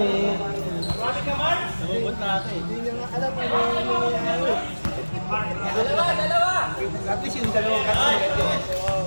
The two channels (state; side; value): inverted; both; correlation -1.00